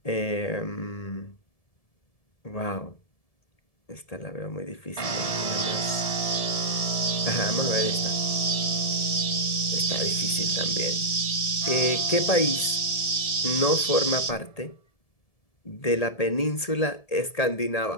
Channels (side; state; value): right; late; 1.7 ms